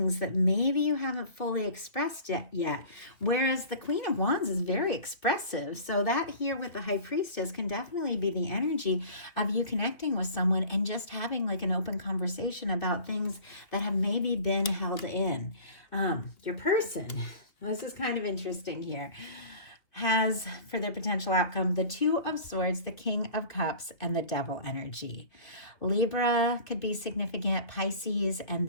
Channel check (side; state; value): right; late; 2.8 ms